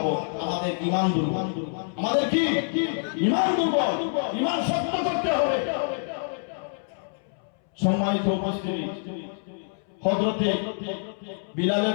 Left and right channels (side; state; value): right; silent; 61 dB below the other